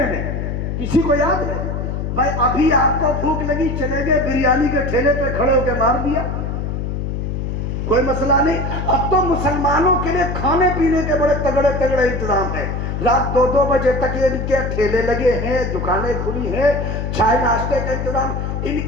میں؟ کسی کو یاد ہے؟ بھائی ابھی آپ کو بھوک لگی، چلے گئے بریانی کے ٹھیلے پہ کھڑے ہو کے مار دیا، کوئی مسئلہ نہیں۔ اب تو مسلمانوں کے لیے کھانے پینے کے بڑے تگڑے تگڑے انتظام ہیں، رات 2 بجے تک یہ ان کے ٹھیلے لگے ہیں، دکانیں کھلی ہیں، چائے ناشتے کا انتظام۔ ان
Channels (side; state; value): left; noise; hum, 3 dB below the sound